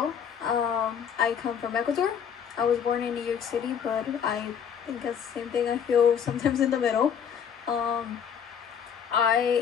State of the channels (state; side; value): quieter; right; 7.8 dB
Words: I come from Ecuador. I was born in New York City, but I think that's the same thing. I feel sometimes in the middle.